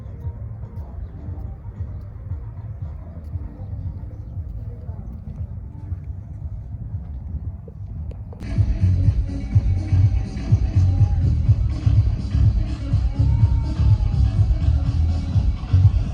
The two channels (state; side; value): identical; both; correlation 1.00